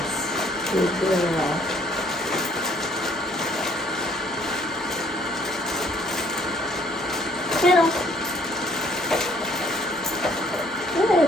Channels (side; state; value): both; normal; correlation 0.62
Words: good girl. Kennel. Good.